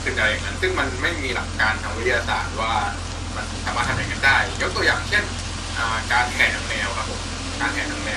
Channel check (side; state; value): both; identical; correlation 1.00